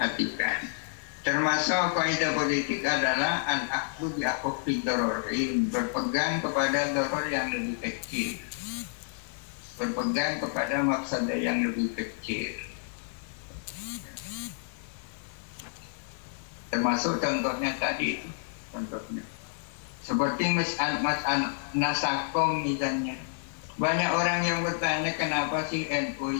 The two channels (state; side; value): silent; right; digital silence